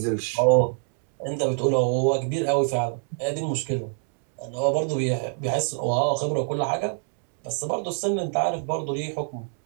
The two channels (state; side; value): silent; left; 61 dB below the other